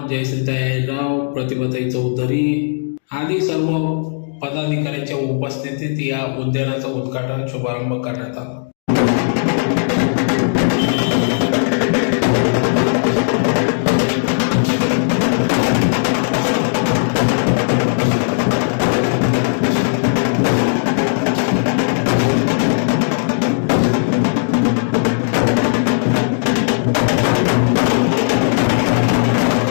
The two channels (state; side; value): silent; right; digital silence